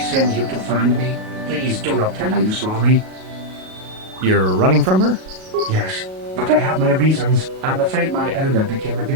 you to find me? Please do not tell her you saw me. You're running from her? Yes, but I have my reasons. I'm afraid my owner became a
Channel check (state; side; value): late; left; 37 ms